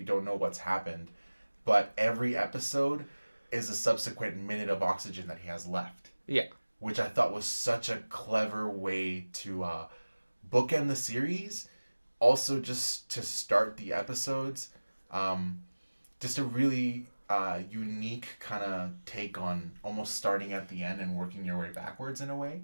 don't know what's happened. But every episode is a subsequent minute of oxygen that he has left. Yeah. Which I thought was such a clever way to bookend the series. Also, just to start the episodes. Just a really unique kind of take on almost starting at the end and working your way backwards in a way.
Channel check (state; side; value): inverted; both; correlation -1.00